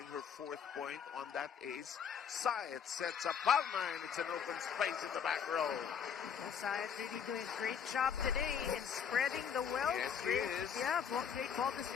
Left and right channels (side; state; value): right; quieter; 7.4 dB